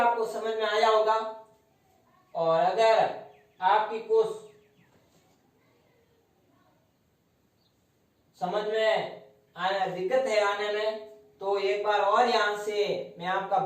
समझ में आया होगा। और अगर आपकी कुछ समझ में दिक्कत है आने में, तो एक बार और यहां से मैं आपका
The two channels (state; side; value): identical; both; correlation 1.00